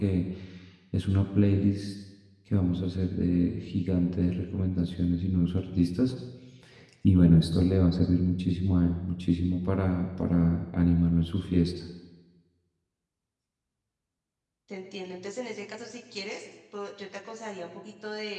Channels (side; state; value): both; identical; correlation 1.00